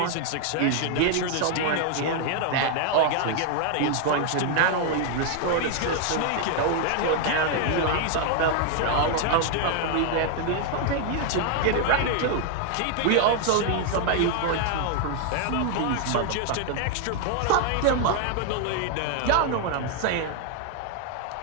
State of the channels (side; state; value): both; different; correlation 0.00